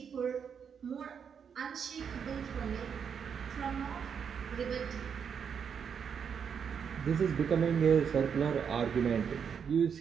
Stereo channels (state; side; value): quieter; left; 7.1 dB